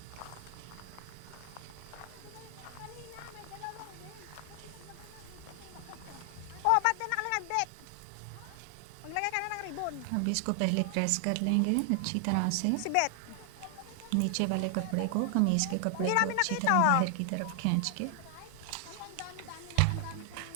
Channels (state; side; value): different; both; correlation 0.00